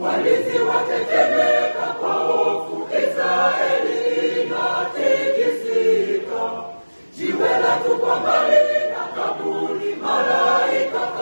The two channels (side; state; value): both; inverted; correlation -1.00